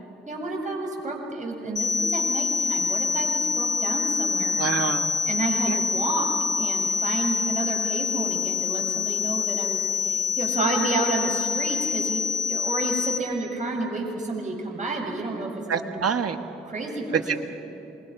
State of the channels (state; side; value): normal; both; correlation 0.63